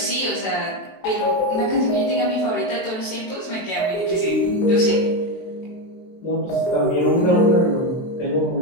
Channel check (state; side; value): late; right; 23 ms